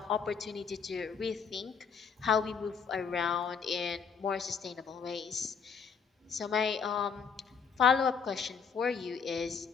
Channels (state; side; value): quieter; right; 6.3 dB